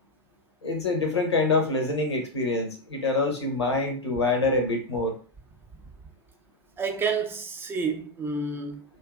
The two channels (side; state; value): both; normal; correlation 0.08